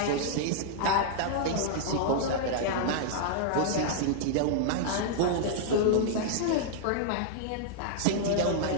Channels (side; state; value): both; different; correlation -0.01